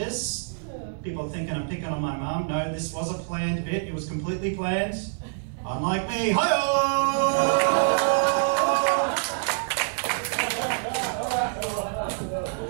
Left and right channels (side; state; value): left; silent; digital silence